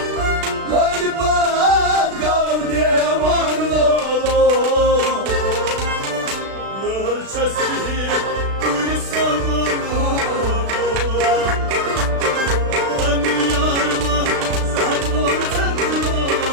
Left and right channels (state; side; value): late; left; 36 ms